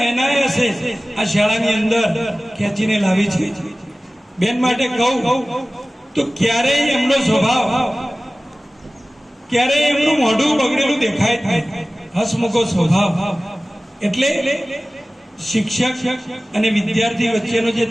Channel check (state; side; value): normal; both; correlation 0.97